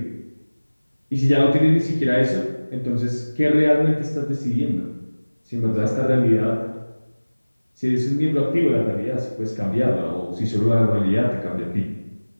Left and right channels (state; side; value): inverted; both; correlation -1.00